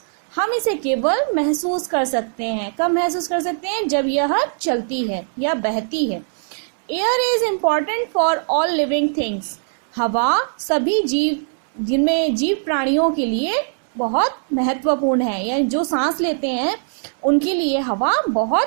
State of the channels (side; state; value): left; silent; 65 dB below the other